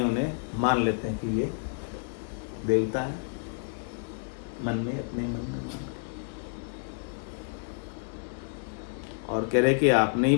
उन्हें मान लेते हैं कि ये देवता है। मन में, अपने मन में मान के। और कह रहे कि आपने ही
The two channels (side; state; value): right; silent; digital silence